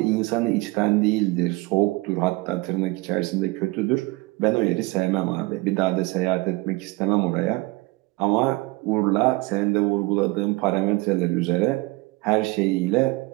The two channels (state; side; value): quieter; left; 23.0 dB